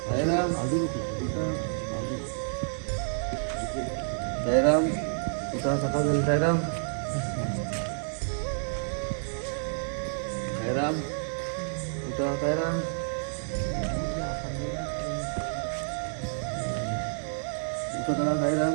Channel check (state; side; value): silent; left; digital silence